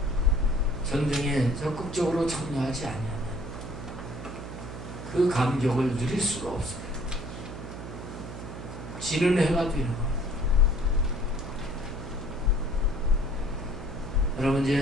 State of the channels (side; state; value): right; noise; hum, 9 dB below the sound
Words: 전쟁에 적극적으로 참여하지 아니하면 그 감격을 누릴 수가 없어요. 지는 해가 되는 거예요. 여러분